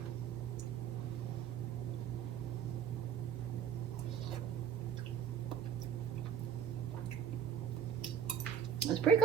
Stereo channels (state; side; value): quieter; left; 7.9 dB